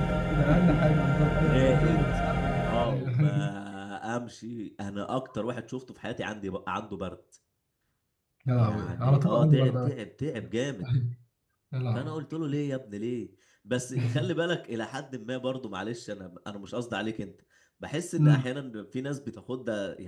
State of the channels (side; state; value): both; identical; correlation 1.00